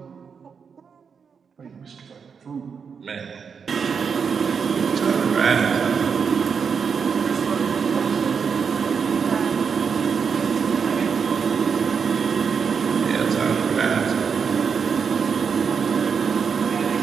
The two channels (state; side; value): quieter; left; 6.2 dB